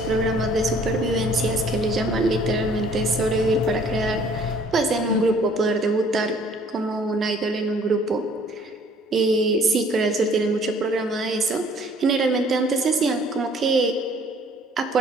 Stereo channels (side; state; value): both; normal; correlation 0.57